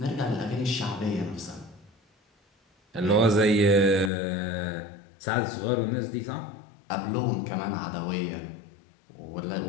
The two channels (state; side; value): drops out; right; at 4.1 s